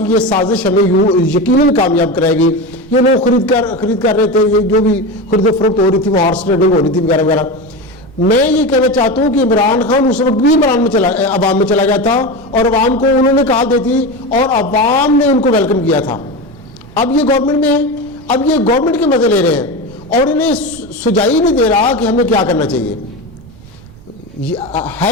یہ سازش ہمیں یقیناً کامیاب کرائے گی. یہ لوگ خرید کر رہے تھے، یہ جو بھی خرید و فروخت ہو رہی تھی وہ ہارس ٹریڈنگ ہو رہی تھی وغیرہ وغیرہ. میں یہ کہنا چاہتا ہوں کہ عمران خان اس وقت بھی عوام میں چلا گیا تھا اور عوام کو انہوں نے کہا دیتی اور عوام نے ان کو ویلکم کیا تھا. اب یہ گورنمنٹ میں ہے, اب یہ گورنمنٹ کے مزے لے رہے ہیں اور انہیں سجائی نہیں دے رہا کہ ہمیں کیا کرنا چاہیے.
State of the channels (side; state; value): right; noise; rumble, 22 dB below the sound